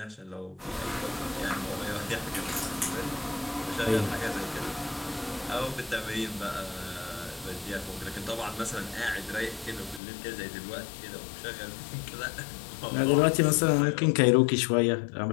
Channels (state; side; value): drops out; right; at 10.0 s